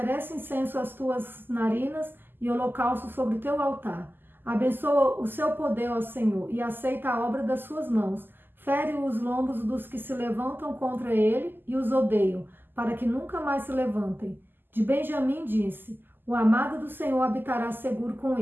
incenso às tuas narinas e holocausto sobre o teu altar. Abençoa o seu poder, ó Senhor, e aceita a obra das suas mãos. Fere os lombos dos que se levantam contra ele e os odeiam, para que nunca mais se levantem. De Benjamim disse: o amado do Senhor habitará seguro com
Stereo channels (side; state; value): left; late; 0.094 ms